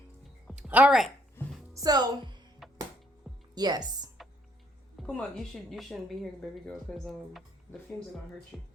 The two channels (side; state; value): both; normal; correlation 0.68